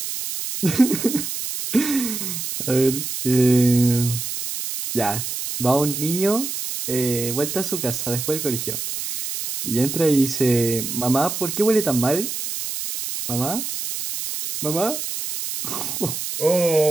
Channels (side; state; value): right; noise; hiss, 5 dB below the sound